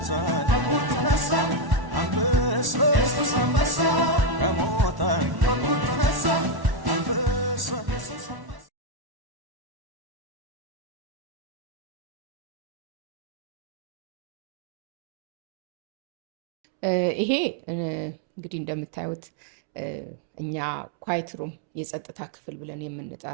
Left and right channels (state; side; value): late; left; 1.1 ms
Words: ተነሳ አንበሳ ኢየሱስ አንበሳ ከሙታን ተነሳ አንበሳ ኢየሱስ አንበሳ። ይሄ እንግዲህ እንደምታዩት እኛ ኳይት ሩም የጸጥታ ክፍል ብለን